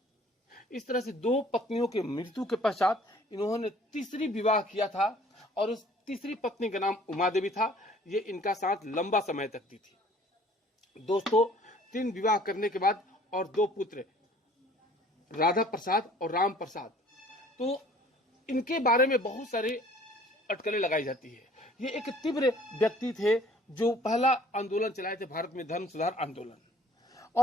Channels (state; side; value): normal; both; correlation 0.54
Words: इस तरह से 2 पत्नियों के मृत्यु के पश्चात इन्होंने तीसरी विवाह किया था और उस तीसरी पत्नी का नाम उमा देवी था। ये इनका साथ लंबा समय तक दी थी। दोस्तों, 3 विवाह करने के बाद और 2 पुत्र, राधा प्रसाद और राम प्रसाद। तो इनके बारे में बहुत सारे अटकलें लगाई जाती है। ये एक तीव्र व्यक्ति थे जो पहला आंदोलन चलाए थे भारत में, धर्म सुधार आंदोलन,